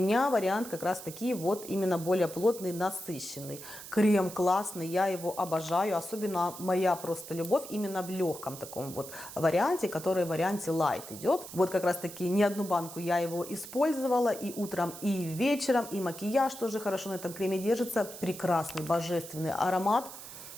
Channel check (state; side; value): noise; right; hiss, 13 dB below the sound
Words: вариант как раз таки вот именно более плотный, насыщенный. Крем классный, я его обожаю, особенно моя просто любовь именно в легком таком вот варианте, который в варианте light идет. Вот как раз таки не одну банку я его использовала и утром, и вечером, и макияж тоже хорошо на этом креме держится. Прекрасный, божественный аромат.